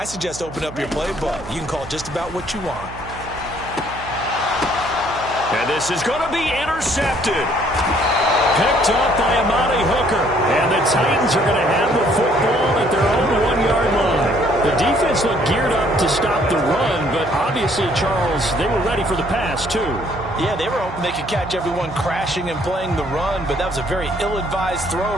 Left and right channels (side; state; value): right; noise; hum, 14 dB below the sound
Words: suggest open up your playbook. You can call just about what you want. And this is going to be intercepted. Picked up by Amani Hooker. And the Titans are going to have the football at their own 1-yard line. The defense looked geared up to stop the run, but obviously, Charles, they were ready for the pass, too. Yeah, they were hoping they could catch everyone crashing and playing the run, but that was a very ill-advised throw